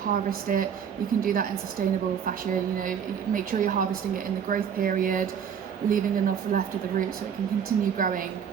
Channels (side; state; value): left; quieter; 7.8 dB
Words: it, you can do that in sustainable fashion. Make sure you're harvesting it in the growth period, leaving enough left of the root so it can continue growing,